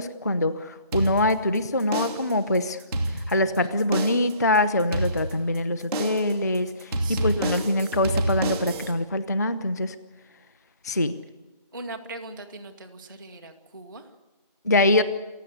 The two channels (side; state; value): both; inverted; correlation -0.56